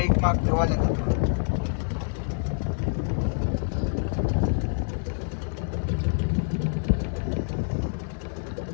माग ठेवा लागेल.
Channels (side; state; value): right; silent; digital silence